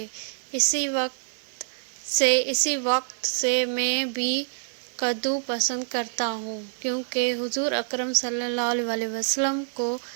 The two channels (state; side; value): silent; left; digital silence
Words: اسی وقت سے میں بھی کدو پسند کرتا ہوں، کیونکہ حضور اکرم صلی اللہ علیہ وسلم کو